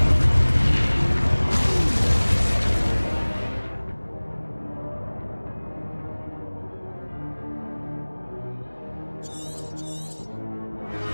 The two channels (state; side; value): inverted; both; correlation -1.00